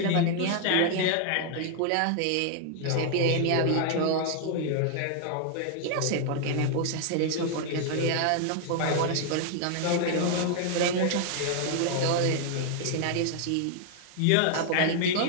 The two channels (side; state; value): both; different; correlation 0.00